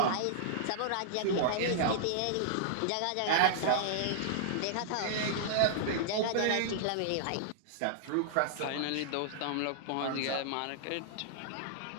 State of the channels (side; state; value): both; different; correlation -0.01